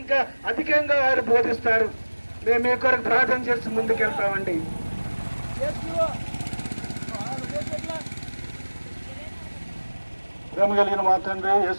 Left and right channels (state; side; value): inverted; both; correlation -1.00